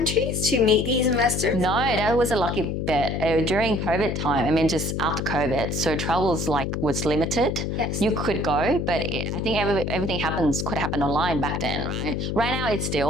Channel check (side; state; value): left; noise; hum, 2 dB below the sound